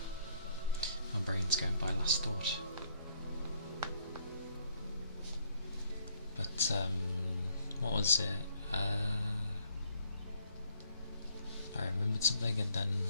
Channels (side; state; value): both; inverted; correlation -0.67